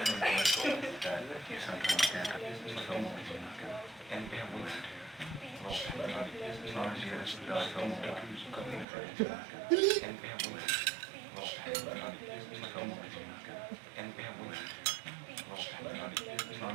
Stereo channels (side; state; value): left; drops out; at 8.8 s